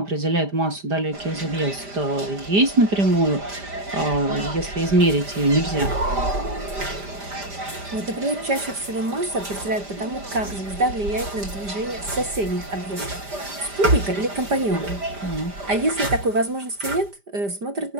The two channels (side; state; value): left; late; 5.0 ms